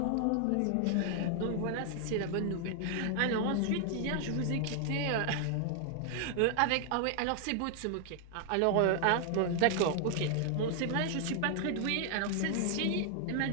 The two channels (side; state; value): both; different; correlation 0.00